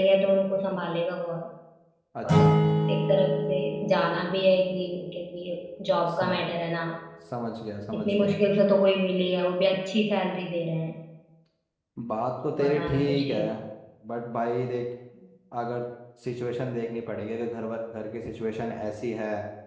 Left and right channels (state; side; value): identical; both; correlation 1.00